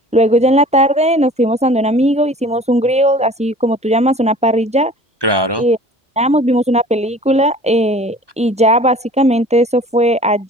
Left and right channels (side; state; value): both; normal; correlation 0.46